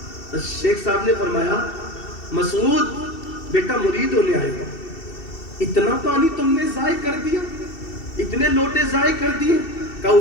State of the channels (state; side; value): late; right; 2.7 ms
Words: تو شیخ صاحب نے فرمایا مسعود بیٹا مرید ہونے آئے ہو، اتنا پانی تم نے ضائع کر دیا، اتنے لوٹے ضائع کر دیے. کہ